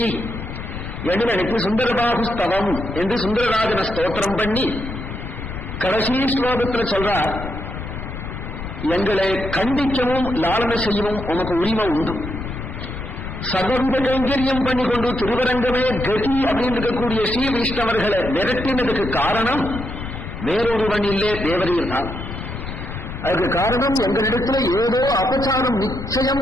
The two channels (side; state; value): left; noise; rumble, 8 dB below the sound